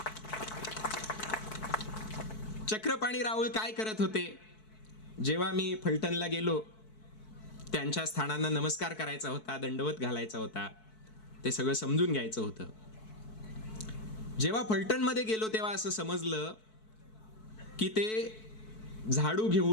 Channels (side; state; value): right; late; 4.6 ms